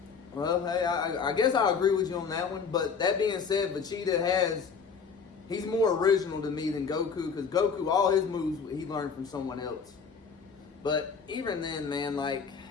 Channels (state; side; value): quieter; right; 5.9 dB